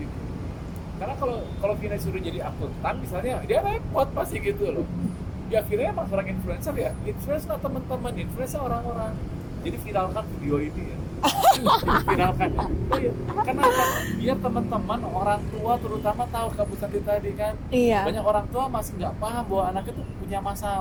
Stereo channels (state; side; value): identical; both; correlation 1.00